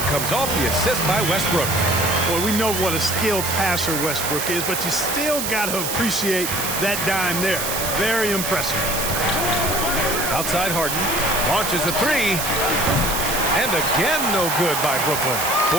comes off the assist by Westbrook. Boy, we know what a skilled passer Westbrook is, but you still got to appreciate that dime there. Very impressive. Outside Harden. Launches a 3. And again, no good by Brooklyn.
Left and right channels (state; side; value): noise; right; hiss, 3 dB below the sound